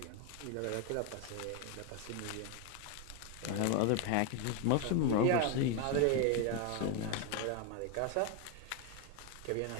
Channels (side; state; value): both; different; correlation 0.01